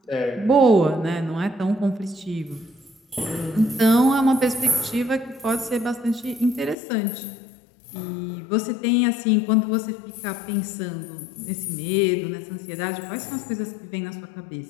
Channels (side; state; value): right; drops out; at 6.8 s